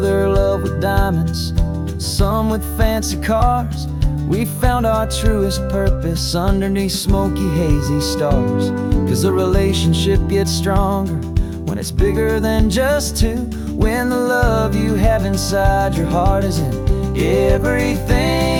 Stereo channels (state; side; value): identical; both; correlation 1.00